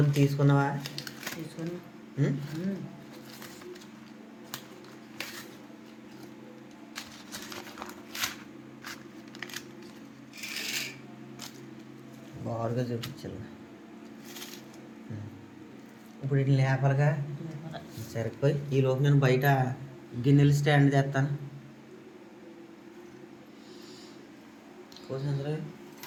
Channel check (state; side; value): identical; both; correlation 1.00